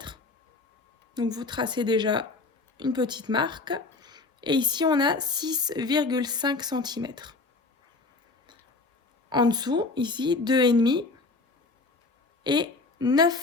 Donc, vous tracez déjà une petite marque. Et ici, on a 6,5 cm. En dessous, ici, 2,5 et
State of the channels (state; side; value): quieter; right; 3.7 dB